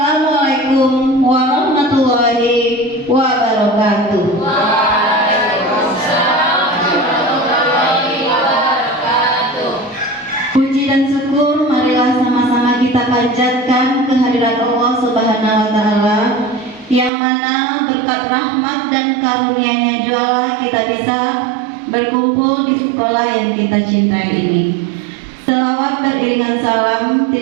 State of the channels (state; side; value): drops out; left; at 17.1 s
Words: warahmatullahi wabarakatuh. Waalaikumsalam warahmatullahi wabarakatuh. Puji dan syukur marilah sama-sama kita panjatkan kehadirat Allah Subhanahu wa taala yang mana berkat rahmat dan karunia-Nya jualah kita bisa berkumpul di sekolah yang kita cintai ini. Selawat beriringan salam